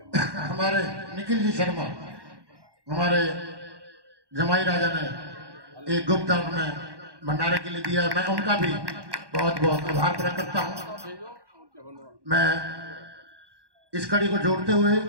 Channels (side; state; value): left; late; 1.1 ms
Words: हमारे निखिल जी शर्मा, हमारे जमाई राजा ने एक गुप्त दान में भंडारे के लिए दिया है। मैं उनका भी बहुत बहुत आभार प्रकट करता हूँ। मैं इस कड़ी को जोड़ते हुए